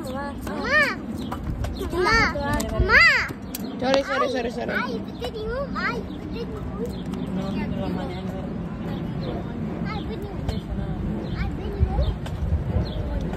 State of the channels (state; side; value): identical; both; correlation 1.00